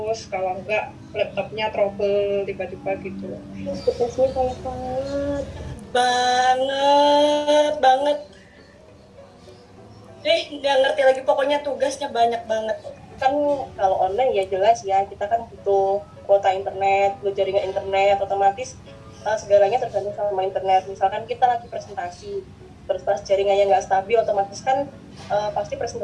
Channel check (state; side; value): identical; both; correlation 1.00